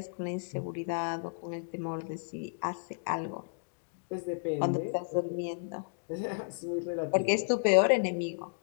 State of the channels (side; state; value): right; silent; digital silence